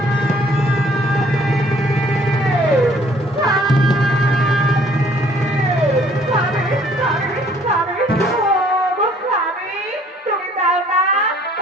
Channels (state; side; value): normal; both; correlation 0.59